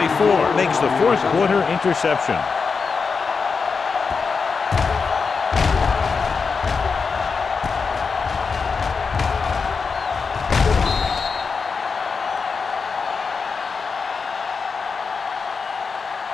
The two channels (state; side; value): quieter; right; 5.1 dB